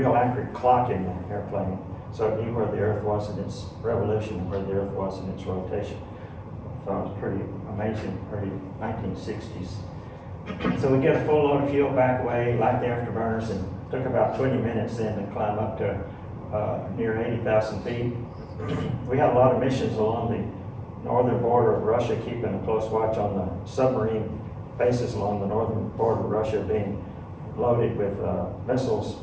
accurate clock in the airplane, so it knew where the Earth was in its revolution and where the Earth was in its rotation. So it was pretty amazing, early 1960s. So we get a full load of fuel back away, light the afterburners, and took about 20 minutes then to climb up to near 80,000 feet. We had a lot of missions along the northern border of Russia, keeping a close watch on the submarine bases along the northern border of Russia being loaded with missiles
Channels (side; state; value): both; identical; correlation 1.00